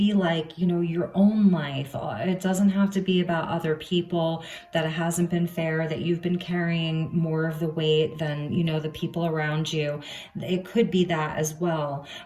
like, you know, your own life. It doesn't have to be about other people, that it hasn't been fair, that you've been carrying more of the weight than, you know, the people around you. It could be that as well.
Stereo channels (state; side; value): identical; both; correlation 1.00